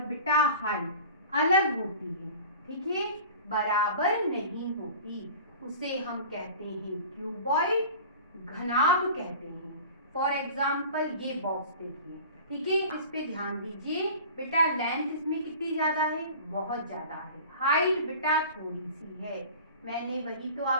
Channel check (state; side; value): inverted; both; correlation -0.40